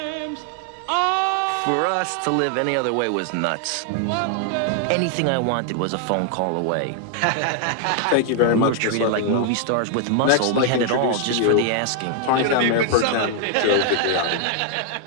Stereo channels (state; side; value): different; both; correlation 0.00